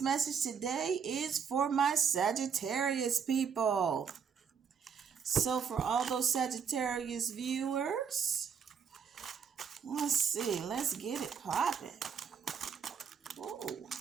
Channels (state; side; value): quieter; left; 6.7 dB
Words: today is for my Sagittarius people. So for all those Sagittarius viewers, let's see. Let's get it popping. Whoa.